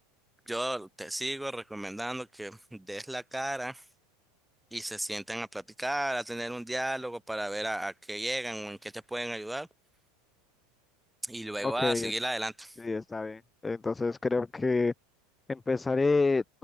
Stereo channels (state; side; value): normal; both; correlation 0.97